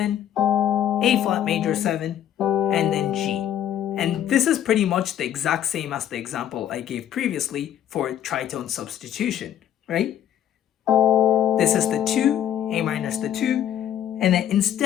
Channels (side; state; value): right; quieter; 10.5 dB